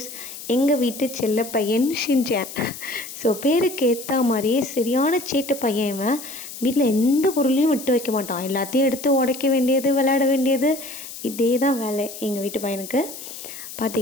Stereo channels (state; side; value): noise; left; hiss, 12 dB below the sound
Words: எங்கள் வீட்டு செல்ல பையன் ஷின்சான். ஸோ பேருக்கு ஏற்ற மாதிரியே சரியான சேட்டு பையன் இவன். வீட்டில் எந்த பொருளையும் விட்டு வைக்க மாட்டான். எல்லாத்தையும் எடுத்து உடைக்க வேண்டியது, விளையாட வேண்டியது, இதே தான் வேலை எங்கள் வீட்டு பையனுக்கு.